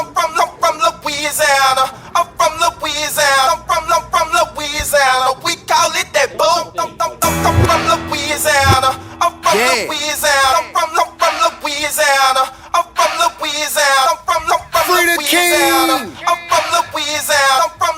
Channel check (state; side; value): identical; both; correlation 1.00